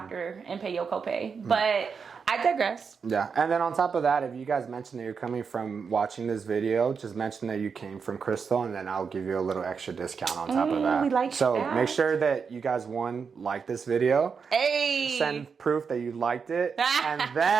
and pay your copay. But I digress. Yeah, and then on top of that, if you guys mention that you're coming from watching this video, just mention that you came from Krystal, and then I'll give you a little extra discount on top of that. We like so that. Make sure that you guys, like this video. Hey! Send proof that you liked it, and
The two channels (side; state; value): left; quieter; 5.8 dB